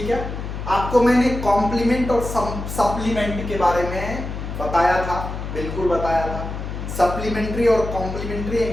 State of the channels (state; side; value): noise; left; hum, 6 dB below the sound